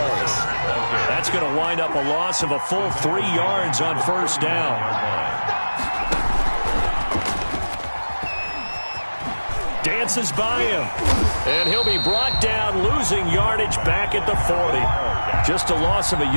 That's going to wind up a loss of a full 3 yards on first down. Dances by him. And he'll be brought down, losing yardage back at the 40. Just a loss of a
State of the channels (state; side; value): inverted; both; correlation -1.00